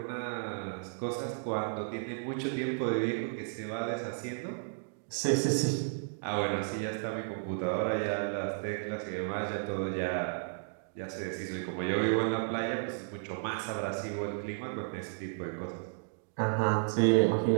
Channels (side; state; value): left; silent; digital silence